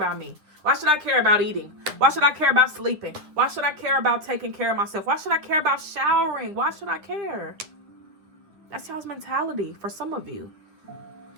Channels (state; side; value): late; left; 9.7 ms